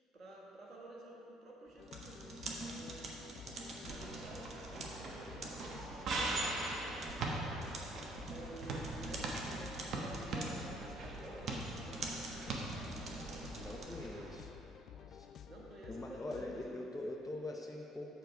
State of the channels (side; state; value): both; normal; correlation 0.63